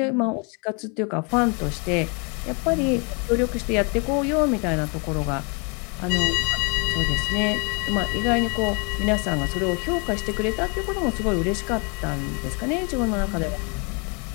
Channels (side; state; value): right; quieter; 34.3 dB